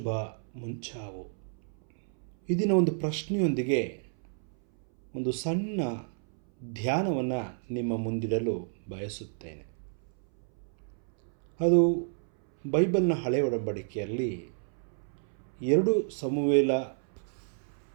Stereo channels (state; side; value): silent; left; 57 dB below the other